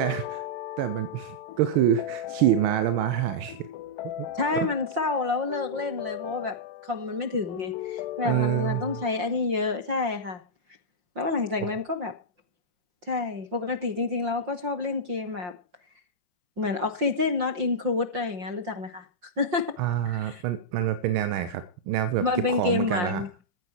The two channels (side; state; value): left; late; 5.6 ms